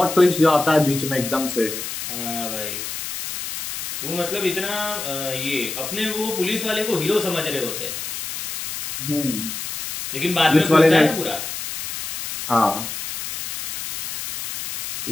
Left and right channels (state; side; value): noise; left; hiss, 6 dB below the sound